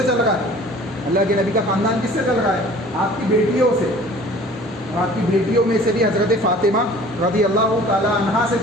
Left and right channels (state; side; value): normal; both; correlation 0.48